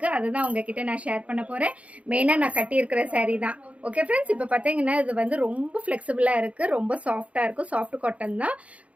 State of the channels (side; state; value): left; late; 0.065 ms